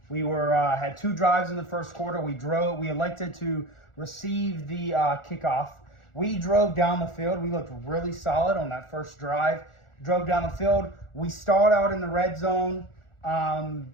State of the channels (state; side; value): late; right; 1.4 ms